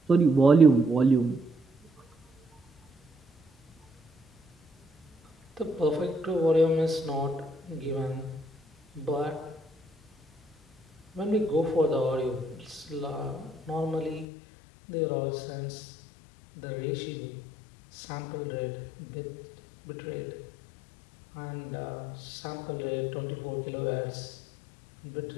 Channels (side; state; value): right; drops out; at 14.2 s